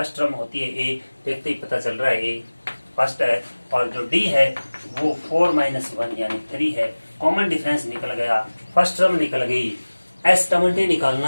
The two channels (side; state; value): both; inverted; correlation -1.00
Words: टर्म होती है A, देखते ही पता चल रहा है A फर्स्ट है, और जो D है वो 4 - 1 यानी 3 है। कॉमन डिफरेंस निकल गया, फर्स्ट टर्म निकल गई। S20